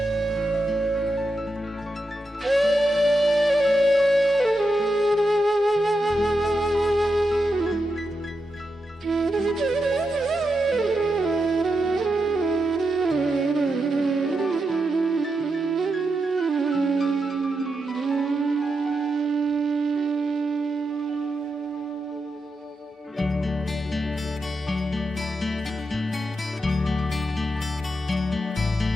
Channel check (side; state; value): both; normal; correlation 0.86